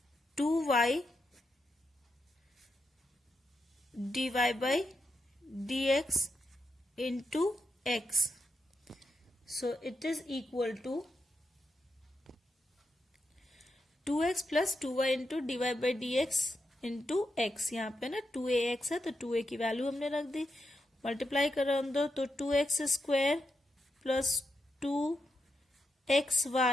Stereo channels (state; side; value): normal; both; correlation 0.85